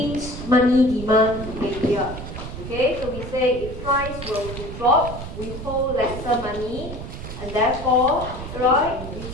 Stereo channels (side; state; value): right; noise; rumble, 9 dB below the sound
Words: money demand behavior. Okay, so we say if price were to drop, we hold lesser money and therefore, right,